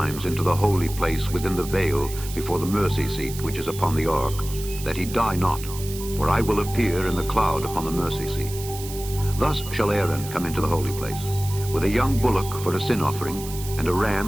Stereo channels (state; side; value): noise; right; hiss, 12 dB below the sound